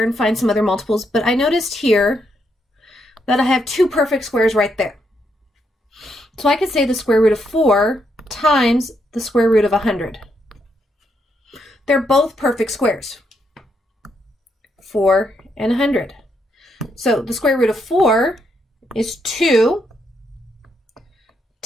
and find some other multiples, but I noticed here that I have 2 perfect squares right there. So I could say the square root of 4 times the square root of 100. They're both perfect squares. 4 and 100. So the square root of 4 is 2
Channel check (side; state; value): both; normal; correlation 0.78